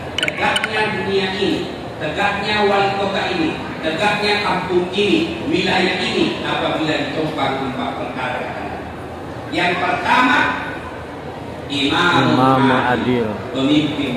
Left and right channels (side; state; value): both; identical; correlation 1.00